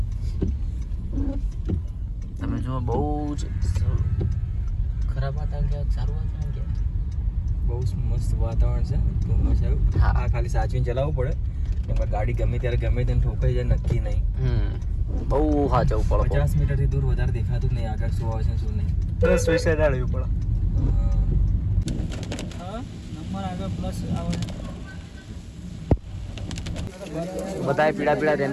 તમે જો બહુ જ ખરાબ વાતાવરણ કે સારું વાતાવરણ કે બહુ મસ્ત વાતાવરણ છે. ધુમ્મસ આવ્યું. હા. આ ખાલી સાચવીને ચલાવવું પડે. એમાં ગાડી ગમે ત્યારે ગમે તેને ઠોકાઈ જાય નક્કી નહીં. બહુ સાચવું પડે. 50 મીટરથી દૂર વધારે દેખાતું જ નહીં આગળ શું આવે છે શું નહીં. પ્લસ વિશે જાળવવું પડે. નંબર આગળ પ્લસ આવે. બધાએ પીળા પીળા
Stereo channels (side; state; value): both; identical; correlation 1.00